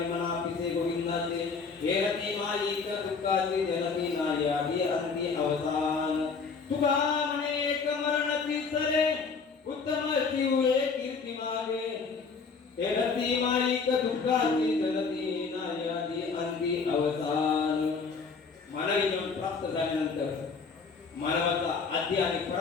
पिसे गोविंदाचे हे रती मालिक दुःखाची जनती नाही आती अंती अवतान तुका अनेक मरणती चले उत्तम जीवे कीर्ती मागे हे रती मालिक दुःखाची जनती नाही आती अंती अवतान. मानवी जीवन प्राप्त झाल्यानंतर मानवाचा आद्य आणि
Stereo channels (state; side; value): quieter; right; 5.1 dB